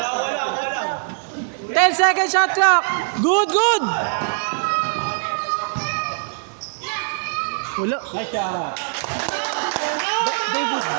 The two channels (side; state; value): left; silent; digital silence